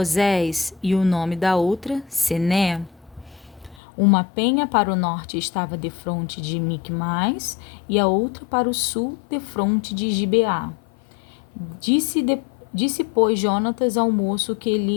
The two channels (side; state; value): right; drops out; at 3.8 s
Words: e o nome da outra Sené. Uma penha para o norte estava defronte de Micmais, e a outra para o sul defronte de Gibeá. Disse, pois, Jonatas ao moço que